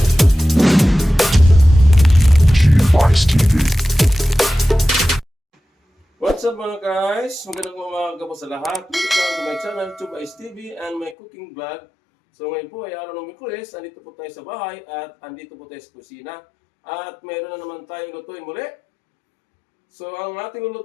What's up mga guys? Magandang umaga po sa lahat. Welcome to my channel, Tube Ice TV and my cooking vlog. So ngayon po ay araw ng Miyerkules. Andito po tayo sa bahay at andito po tayo sa kusina. At mayroon na naman tayong lutuin muli. So ang ating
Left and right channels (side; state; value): right; drops out; at 11.2 s